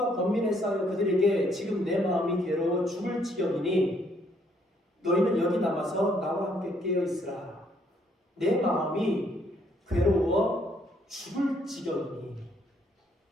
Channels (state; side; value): normal; both; correlation 0.68